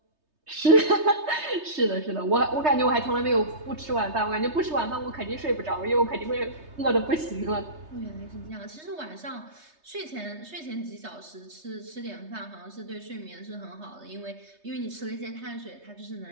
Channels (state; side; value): late; left; 3.2 ms